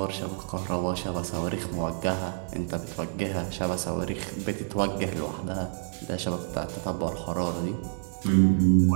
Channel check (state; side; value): silent; left; digital silence